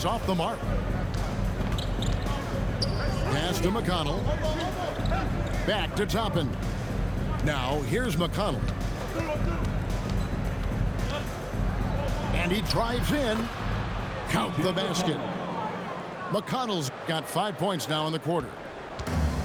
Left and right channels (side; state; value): both; identical; correlation 1.00